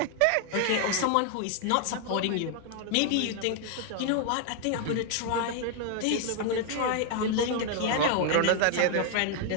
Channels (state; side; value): different; both; correlation 0.00